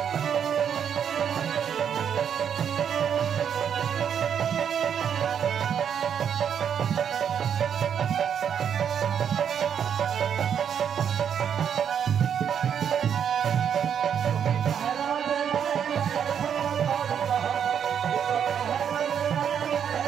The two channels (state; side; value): quieter; left; 8.2 dB